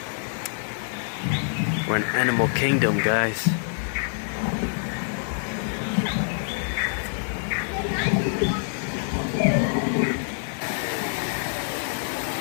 We're in Animal Kingdom, guys.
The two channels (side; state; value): right; silent; digital silence